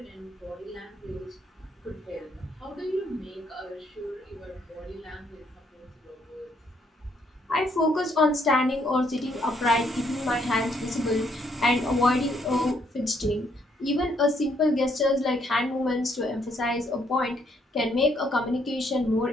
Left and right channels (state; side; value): normal; both; correlation 0.71